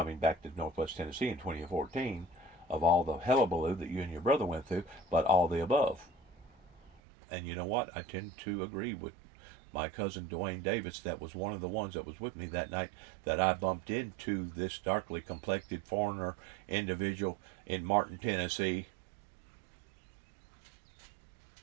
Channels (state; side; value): drops out; left; at 7.0 s